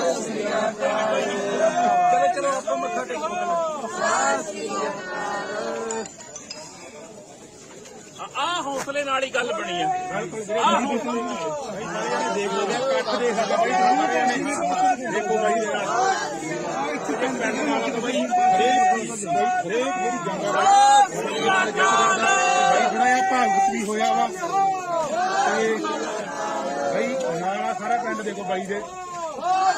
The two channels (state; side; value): identical; both; correlation 1.00